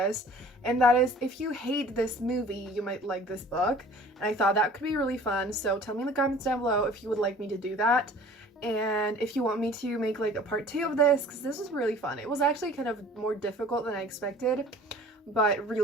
and that is, if you hate this movie, you might like this book. And I thought that could be really fun, so tell me in the comments down below if you would like me to do that, and if you want me to make like a part 2 of this, because this was really fun. It was actually kind of more difficult than I expected, but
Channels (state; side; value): normal; both; correlation 0.48